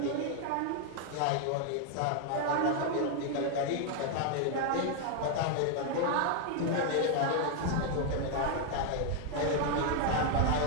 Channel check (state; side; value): different; both; correlation 0.00